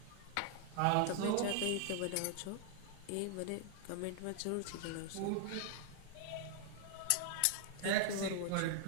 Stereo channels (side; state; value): both; different; correlation -0.01